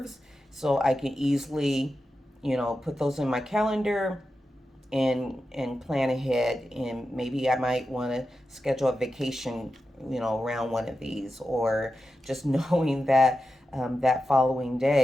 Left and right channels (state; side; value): normal; both; correlation 0.91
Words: So I can easily, put those in my calendar and plan ahead. And maybe I might want to schedule a vacation, around one of these, or just knowing that that following